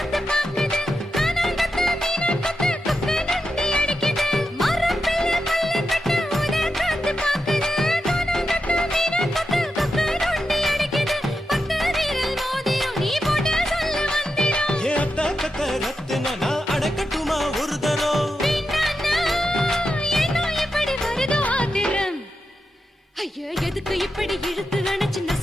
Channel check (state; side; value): normal; both; correlation 0.88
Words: பாக்குது, கானாங்கத்து மீனாக்கத்து குக்கு நொண்டி அடிக்குது. மரத்துல மல்லி கட்டு உதர் காத்து பாக்குது, கானாங்கத்து மீனாக்கத்து குக்கு நொண்டி அடிக்குது. பத்து வீரல் மோதிரம் நீ போட்டு சொல்ல வந்திரும். ஏ அத்த கத்த ரத்தின நான் அடக்கட்டுமா ஒரு தரம். வீணானா, ஏனோ இப்படி வருதோ ஆத்திரம். ஐயோ, எதுக்கு இப்படி இழுத்து அணைச்சு